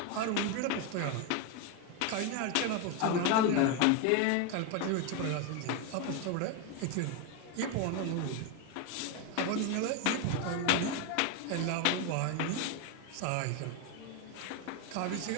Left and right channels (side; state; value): both; different; correlation 0.02